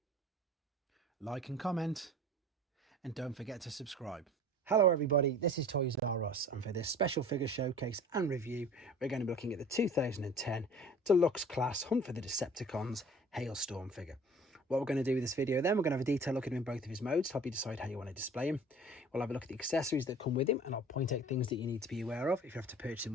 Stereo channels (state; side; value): normal; both; correlation 0.45